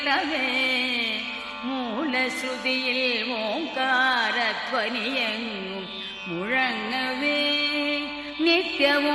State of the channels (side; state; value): both; identical; correlation 1.00